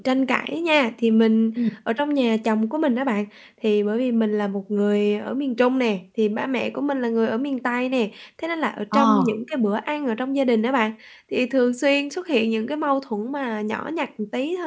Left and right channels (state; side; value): identical; both; correlation 1.00